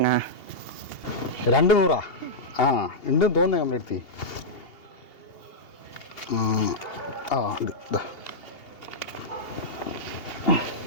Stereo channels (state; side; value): late; right; 2.8 ms